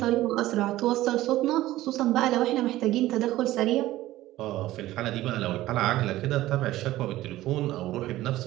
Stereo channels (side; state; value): left; quieter; 15.8 dB